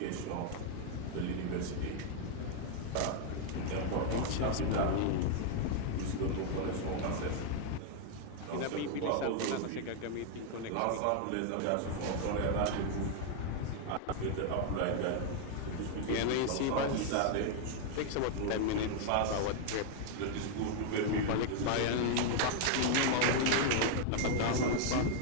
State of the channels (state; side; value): different; both; correlation 0.00